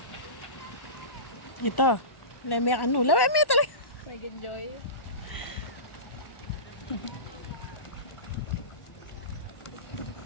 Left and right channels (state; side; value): late; right; 1.1 ms